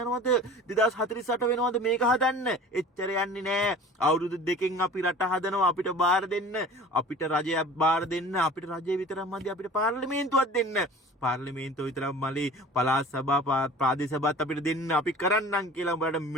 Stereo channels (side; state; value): both; normal; correlation 0.42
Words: 2048 වෙනවද මේක හදන්න එච්චර යන්නේ නෑ අවුරුදු දෙකෙන් අපි රට හදනවා අපිට බාර දෙන්න අපිට රජයක් බාර දෙන්න අපිට රජය විතරක් මදි අපිට පාර්ලිමේන්තුවක් දෙන්න පාර්ලිමේන්තුව විතරක් මලි පළාත් සභා ප්‍රාදේශ සභාත් අපිට දෙන්න අපි කරන්නම් කියලා උඹලට